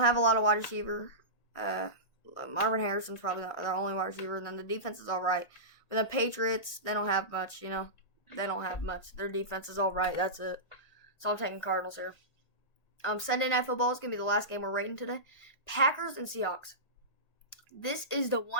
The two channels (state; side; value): late; right; 1.6 ms